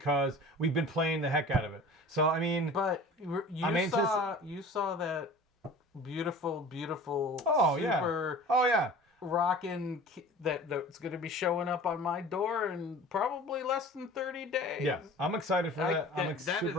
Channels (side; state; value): both; normal; correlation 0.41